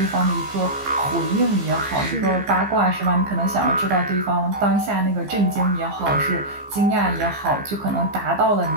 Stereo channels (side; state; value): left; late; 15 ms